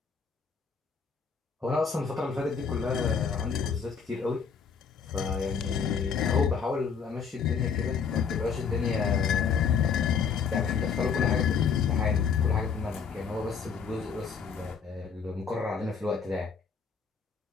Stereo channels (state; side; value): quieter; right; 6.2 dB